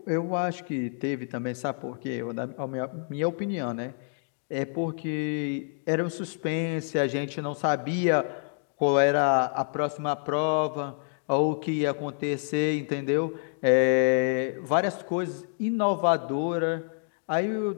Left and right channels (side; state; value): right; silent; digital silence